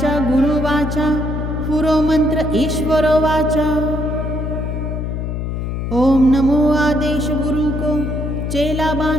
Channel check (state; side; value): noise; left; hum, 3 dB below the sound